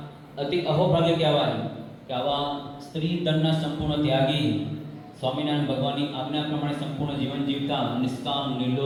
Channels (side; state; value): both; identical; correlation 1.00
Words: અતિ અહોભાગ્ય કહેવાય કે આવા સ્ત્રી ધનના સંપૂર્ણ ત્યાગી, સ્વામિનારાયણ ભગવાનની આજ્ઞા પ્રમાણે સંપૂર્ણ જીવન જીવતા, નિષ્કામ,